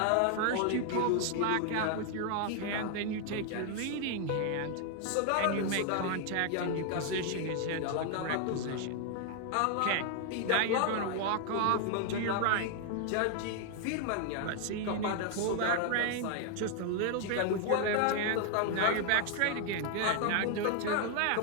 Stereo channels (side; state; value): both; different; correlation 0.00